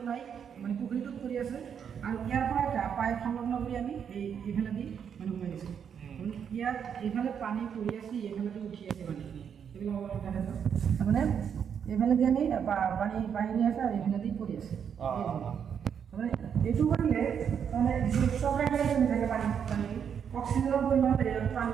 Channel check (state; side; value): quieter; left; 7.7 dB